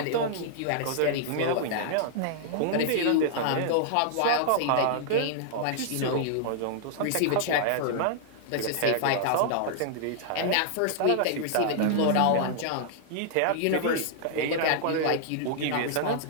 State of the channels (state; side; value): different; both; correlation -0.01